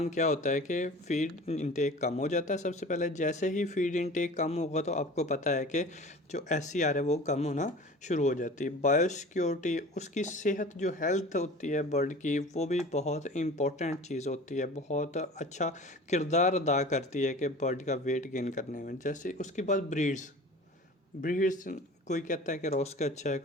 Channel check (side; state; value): both; normal; correlation 0.40